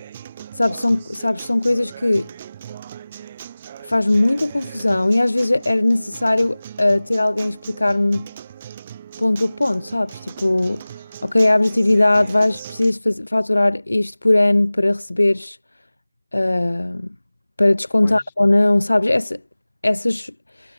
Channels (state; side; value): inverted; both; correlation -1.00